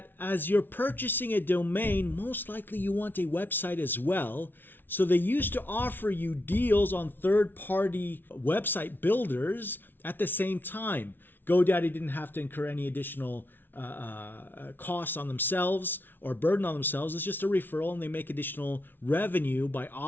as you're purchasing a domain, most likely you want a website as well. So they used to offer you deals on third-party website builders at the same time. GoDaddy didn't have to incur any additional costs on themselves or burden on themselves. It's just a referral, and they make additional revenue by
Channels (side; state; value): right; late; 0.097 ms